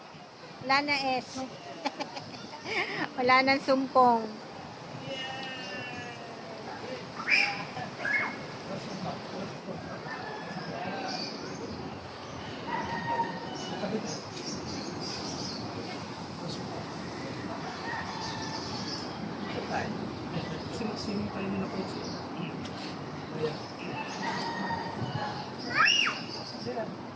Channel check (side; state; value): both; identical; correlation 1.00